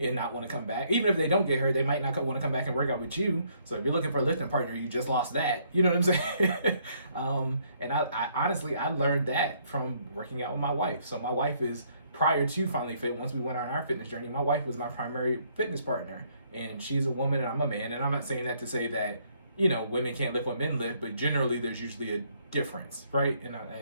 not want to come back. Even if they don't get hurt, they might not want to come back and work out with you. So if you're looking for a lifting partner, you just lost that. You know what I'm saying? And I honestly, I learned that from working out with my wife. So my wife is, prior to FinallyFit, once we went on our fitness journey, my wife was my primary fitness partner. And she's a woman and I'm a man. And I'm not saying that to say that women can't lift what men lift, but generally there's usually a difference, right? And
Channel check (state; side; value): inverted; both; correlation -0.67